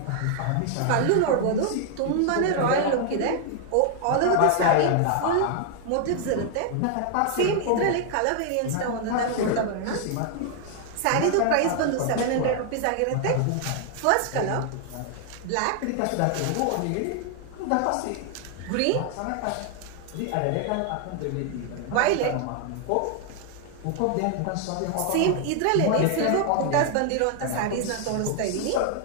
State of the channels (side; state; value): both; different; correlation 0.00